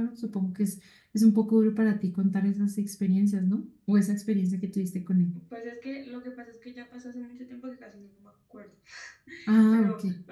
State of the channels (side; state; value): both; identical; correlation 1.00